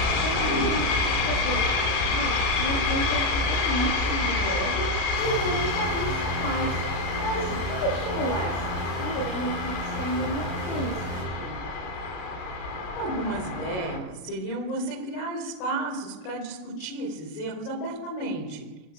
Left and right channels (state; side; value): late; right; 33 ms